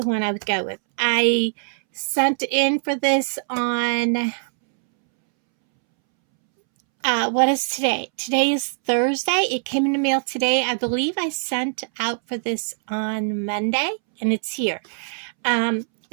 one I would go with. I sent in for this on, what is today? Today is Thursday. It came in the mail today. I believe I sent out for this on Monday, and it's here.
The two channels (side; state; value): left; silent; 64 dB below the other